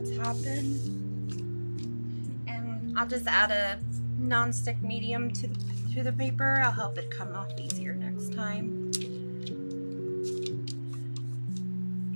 happen. And I'll just add a non-stick medium to the paper. I'll help it come off easier next time.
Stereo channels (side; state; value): both; inverted; correlation -1.00